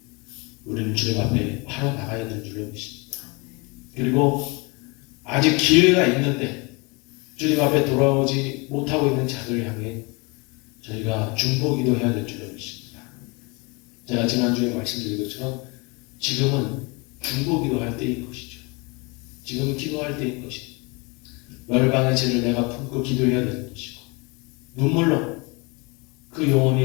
우리는 주님 앞에 바로 나가야 될 줄로 믿습니다. 그리고 아직 기회가 있는데 주님 앞에 돌아오지 못하고 있는 자들을 향해 저희가 중보기도 해야 될 줄로 믿습니다. 제가 지난주에 말씀드린 것처럼 지금은 중보기도 할 때인 것이죠. 지금은 기도할 때인 것이죠. 열방의 죄를 내가 품고 기도해야 되는 것이고 눈물로 그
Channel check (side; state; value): right; quieter; 28.7 dB